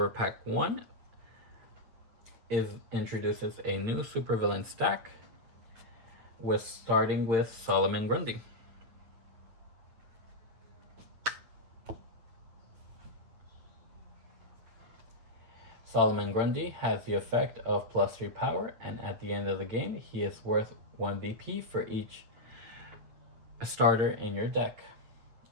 Pack 1 introduces a new supervillain stack starting with Solomon Grundy. Solomon Grundy has the effect of +3 power, and at the end of the game, he is worth 1 BP for each starter in your deck.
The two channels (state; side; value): late; left; 9.1 ms